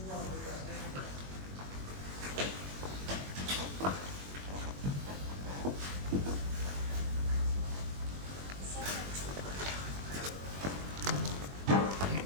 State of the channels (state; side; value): late; left; 21 ms